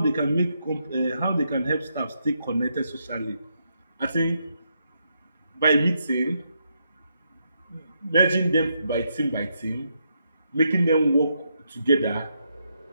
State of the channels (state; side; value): inverted; both; correlation -0.80